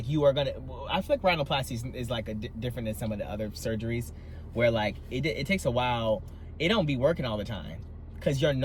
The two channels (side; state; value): both; identical; correlation 1.00